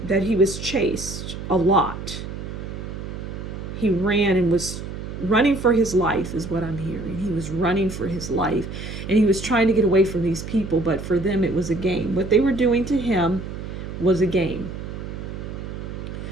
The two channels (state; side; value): noise; right; hum, 8 dB below the sound